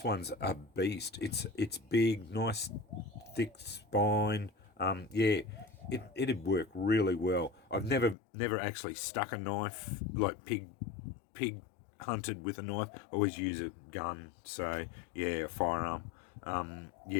one's a beast. It's big, nice, thick spine. Yeah, it'd work really well. I've never actually stuck a knife like pig hunted with a knife. I always use a gun. So yeah, a firearm.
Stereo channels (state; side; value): drops out; right; at 8.2 s